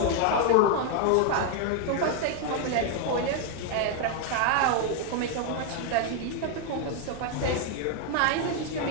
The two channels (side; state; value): both; different; correlation 0.00